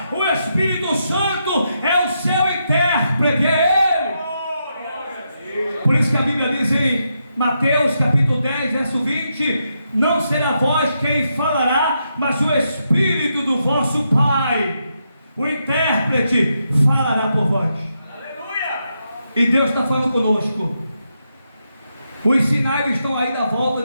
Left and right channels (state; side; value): inverted; both; correlation -0.83